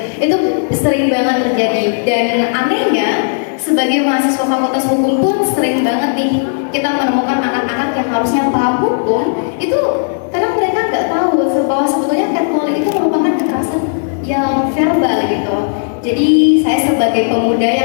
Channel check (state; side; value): silent; right; digital silence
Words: Itu sering banget terjadi. Dan anehnya sebagai mahasiswa fakultas hukum pun sering banget nih kita menemukan anak-anak yang harusnya paham hukum itu karena mereka nggak tahu bahwa sebetulnya catcalling itu merupakan kekerasan yang verbal gitu. Jadi saya sebagai pemuda